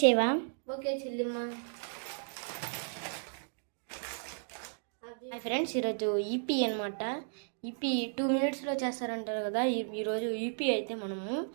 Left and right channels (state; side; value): silent; left; digital silence